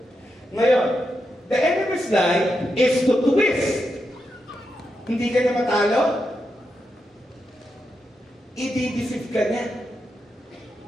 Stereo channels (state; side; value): normal; both; correlation 0.85